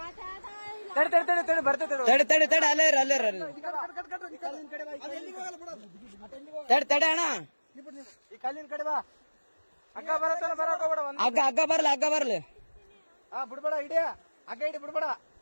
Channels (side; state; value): both; inverted; correlation -1.00